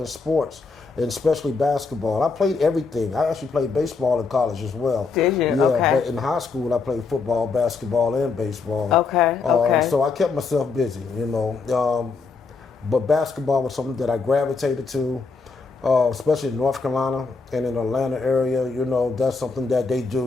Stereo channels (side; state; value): right; quieter; 4.5 dB